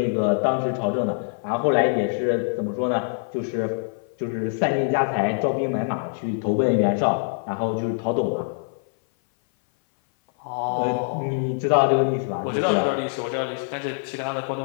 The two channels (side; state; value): right; silent; 57 dB below the other